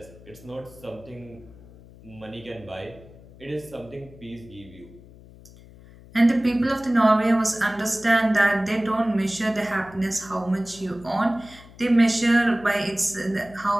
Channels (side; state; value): left; noise; hum, 21 dB below the sound